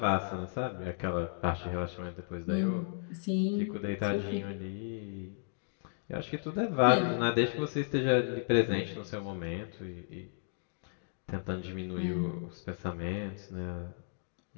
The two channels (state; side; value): silent; right; digital silence